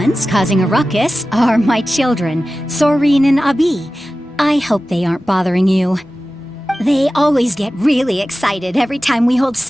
causing a ruckus are my children, Soreen and Abi. I hope they aren't bothering you. They always get really excited every time we hold a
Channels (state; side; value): normal; both; correlation 0.95